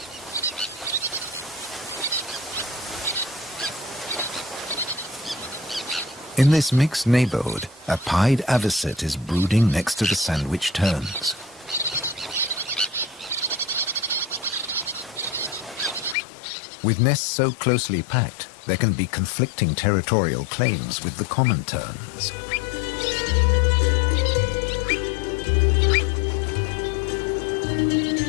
In this mixed neighborhood, a pied avocet is brooding next to the sandwich terns. With nests so closely packed, there can be conflicting territorial claims with the common terns.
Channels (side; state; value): right; drops out; at 16.2 s